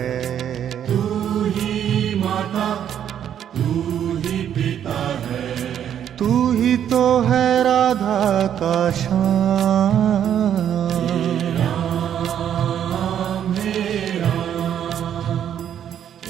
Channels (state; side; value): quieter; left; 9.6 dB